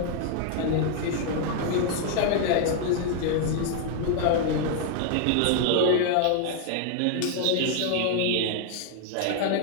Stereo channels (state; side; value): different; both; correlation 0.00